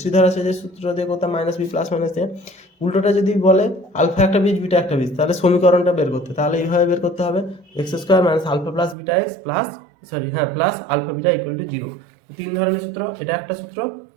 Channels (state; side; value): drops out; left; at 9.0 s